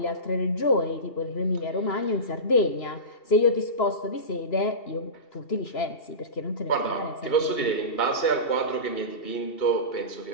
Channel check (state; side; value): late; right; 2.7 ms